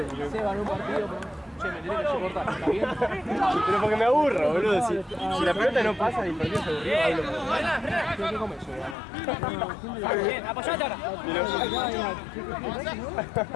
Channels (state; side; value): drops out; right; at 9.0 s